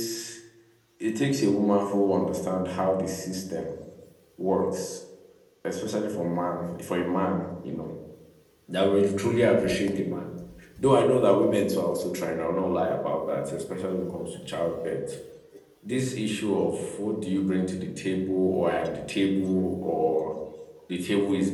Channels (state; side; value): identical; both; correlation 1.00